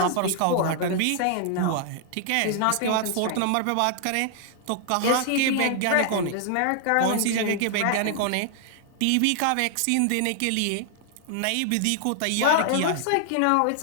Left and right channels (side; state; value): both; different; correlation 0.00